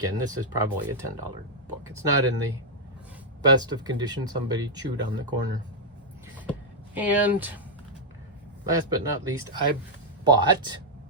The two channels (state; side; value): normal; both; correlation -0.04